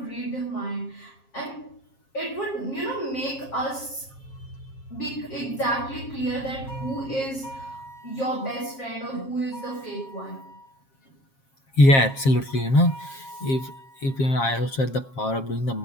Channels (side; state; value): right; late; 7.5 ms